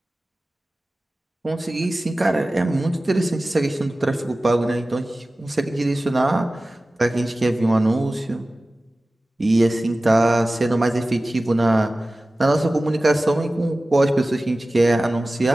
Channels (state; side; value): normal; both; correlation 0.97